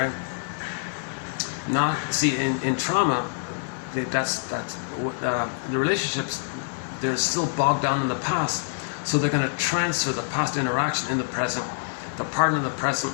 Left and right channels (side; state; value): right; silent; digital silence